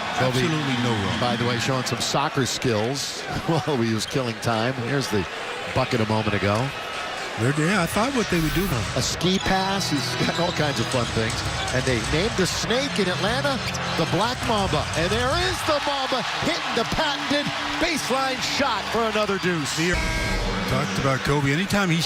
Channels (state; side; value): identical; both; correlation 1.00